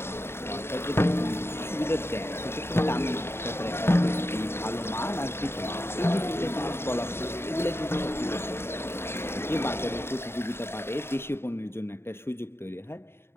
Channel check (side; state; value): right; late; 0.12 ms